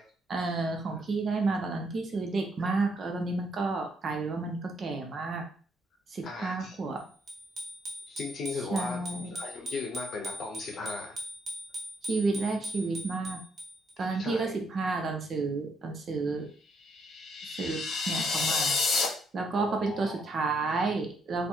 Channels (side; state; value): both; normal; correlation 0.73